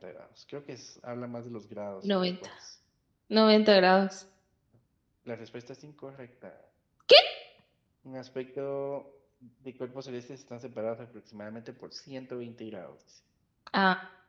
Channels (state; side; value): identical; both; correlation 1.00